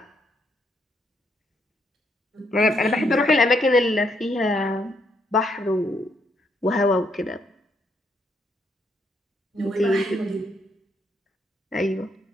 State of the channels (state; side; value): normal; both; correlation 0.74